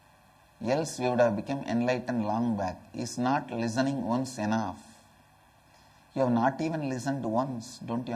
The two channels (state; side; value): identical; both; correlation 1.00